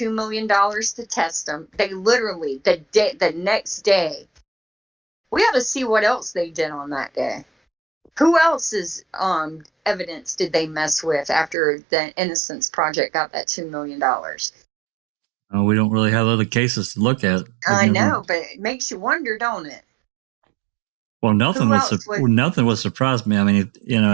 million to test them. They literally, the next day, we ought to see what else they did on that day. Who else's evidence did they mess with after the Innocence Project got that $2 million? We don't really have other cases to look at. I know, but it makes you wonder, don't it? Well, nothing would surprise me. I mean,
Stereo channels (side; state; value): left; drops out; at 11.6 s